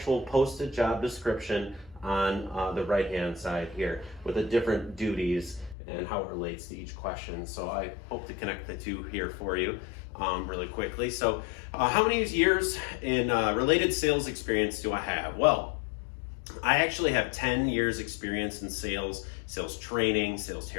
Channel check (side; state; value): right; drops out; at 5.8 s